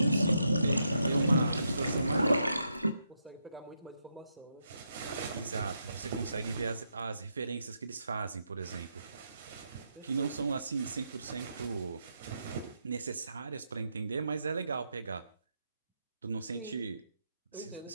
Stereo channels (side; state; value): both; inverted; correlation -0.81